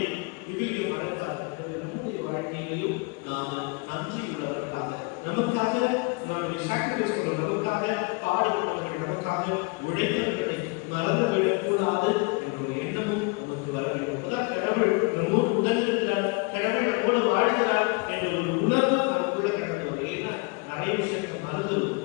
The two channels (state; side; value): quieter; right; 29.5 dB